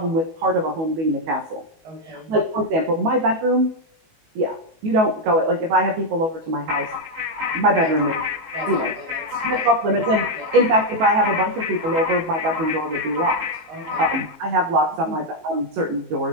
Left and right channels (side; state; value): left; late; 19 ms